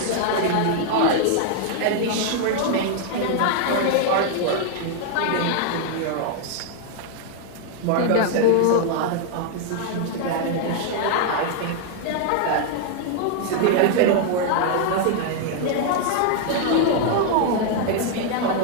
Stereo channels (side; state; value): both; different; correlation 0.00